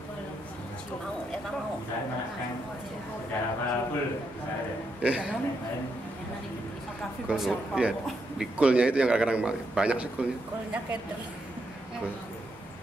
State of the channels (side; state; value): both; normal; correlation 0.81